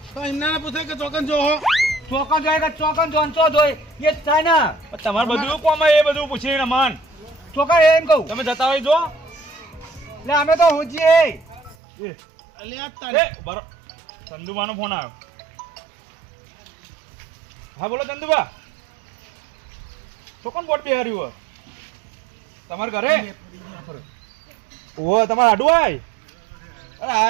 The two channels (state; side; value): drops out; left; at 11.8 s